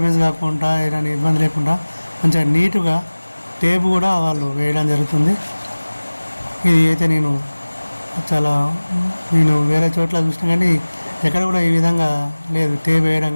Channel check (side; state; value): both; inverted; correlation -1.00